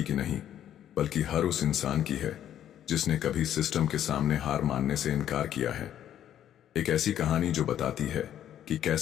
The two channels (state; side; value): quieter; right; 10.8 dB